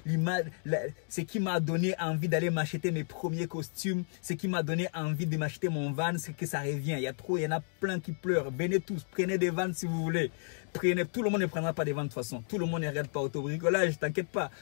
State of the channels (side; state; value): right; silent; 56 dB below the other